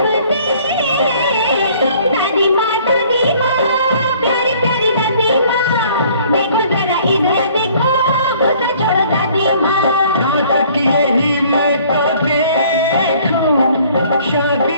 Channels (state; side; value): inverted; both; correlation -0.56